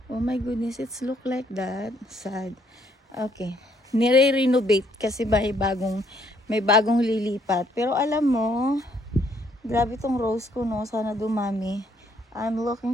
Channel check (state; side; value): normal; both; correlation 0.68